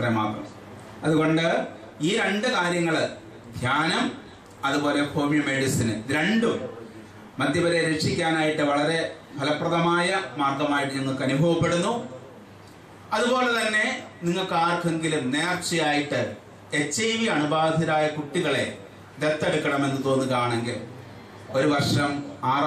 മാത്രം. അതുകൊണ്ട് ഈ 2 കാര്യങ്ങള്, ധ്യാനം അതുപോലെ ഹോമിയോ മെഡിസിന്, ഇത് 2ഉം മദ്യപരെ രക്ഷിക്കാനായിട്ട് വളരെ ഫലപ്രദമായ മാർഗമായിട്ട് ഞങ്ങൾക്ക് അനുഭവപ്പെടുന്നു. അതുപോലെ തന്നെ നിങ്ങൾക്ക് ആർക്കെങ്കിലും നേർച്ചയായിട്ട് HIV അണുബാധിതരായ കുട്ടികളെ ദത്തെടുക്കണമെന്ന് തോന്നുകയാണെങ്കിൽ 1 വർഷം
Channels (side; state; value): both; identical; correlation 1.00